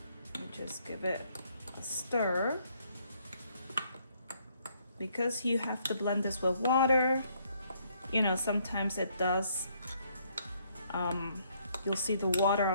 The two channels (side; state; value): both; inverted; correlation -0.69